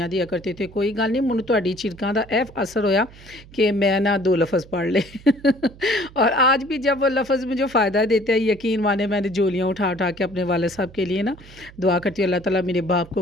दिया करते थे। कोई गल नहीं, मैनूं तुहाडी झिड़कां दा एह असर होया कि मैं ना 2 लफ़्ज़ पढ़ ले। और आज भी जब वो लफ़्ज़ मुझे फ़ायदा देते हैं, यकीन माने मैंने झोलियाँ उठा उठा के अपने वाले साहब के लिए ना दुआ करती हूँ, अल्लाह ताला मेरे बाप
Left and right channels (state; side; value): noise; right; hum, 21 dB below the sound